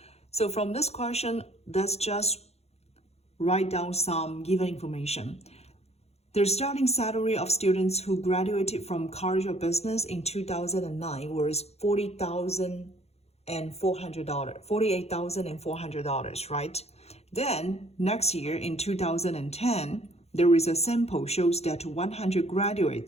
So from this question, let's just write down some given information. The starting salary of students who graduated from College of Business in 2009 was $48,400, right? Then, next year in 2010, there is a sample shows that 100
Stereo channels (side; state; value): right; late; 0.31 ms